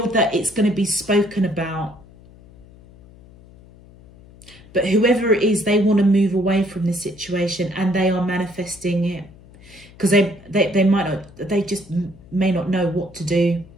that it's going to be spoken about. But whoever it is, they want to move away from this situation, and they are manifesting it. Because they might not, they just may not know what to do.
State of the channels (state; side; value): noise; left; hum, 23 dB below the sound